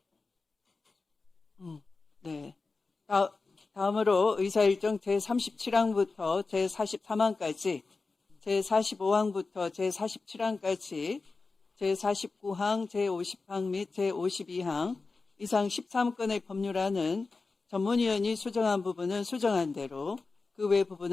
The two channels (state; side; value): quieter; right; 4.0 dB